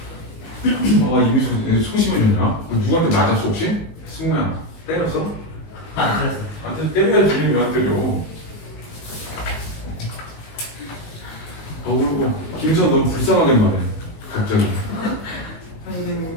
이미 소심해졌냐? 누구한테 맞았어 혹시? 승우야 때렸어? 안 그랬어요. 나한테 때려야지. 왜 안 때려? 그리고 김선 너무 불쌍하게 말해. 갑자기.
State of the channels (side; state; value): right; late; 19 ms